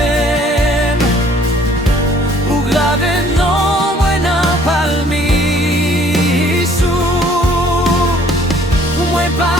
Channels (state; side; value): normal; both; correlation 0.58